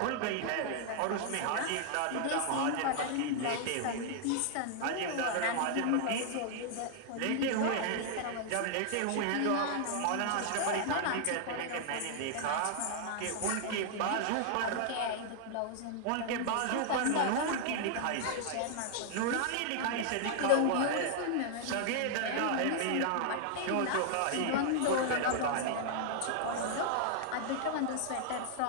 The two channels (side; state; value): both; different; correlation 0.00